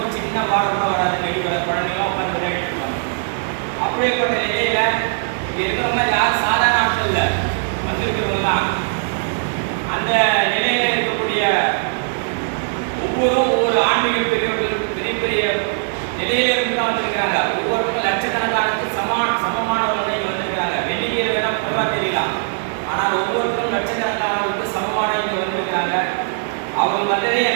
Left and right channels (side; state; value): left; silent; digital silence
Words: சின்ன வாரம் கூட வராது. நெடி குழந்தைலாம் உட்காந்து விளையாடிட்டு இருப்பாங்க. அப்படியேப்பட்ட நிலையில இங்க இருக்கிறவங்க யாரும் சாதாரண ஆட்கள் இல்லை, வந்திருக்கிறவங்க தான். அந்த நிலையில இருக்கக்கூடிய ஒவ்வொரு ஆன்மீக பெரியவர்களுக்கு பெரிய பெரிய நிலையில இருந்து தான் வந்திருக்கிறாங்க. ஒவ்வொருத்தரும் லட்சக்கணக்கானது சமமானவர்கள் இங்க வந்திருக்கிறாங்க. வெளியே வேணா குறைவா தெரியலாம், ஆனால் ஒவ்வொருத்தரும் லட்சக்கணக்கானவர்களுக்கு சமமான இங்க வந்திருக்கிறாங்க. அவங்க வந்ததே